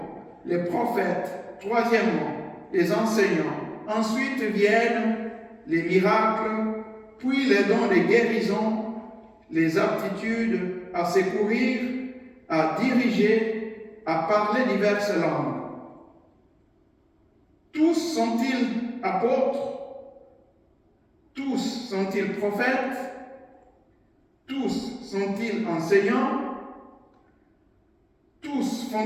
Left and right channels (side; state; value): both; identical; correlation 1.00